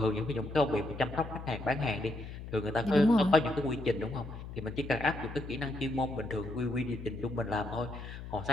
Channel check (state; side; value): noise; left; hum, 10 dB below the sound